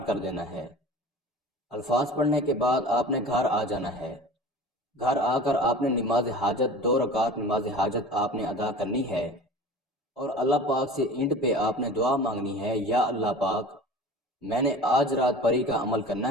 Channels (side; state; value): both; normal; correlation 0.39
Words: کر دینا ہے۔ الفاظ پڑھنے کے بعد آپ نے گھر آ جانا ہے۔ گھر آ کر آپ نے نماز حاجت 2 رکعت نماز حاجت آپ نے ادا کرنی ہے، اور اللہ پاک سے اینڈ پہ آپ نے دعا مانگنی ہے، یا اللہ پاک میں نے آج رات پری کا عمل